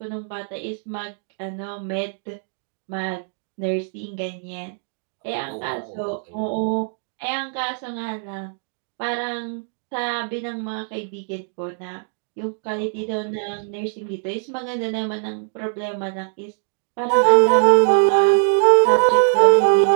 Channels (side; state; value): left; silent; digital silence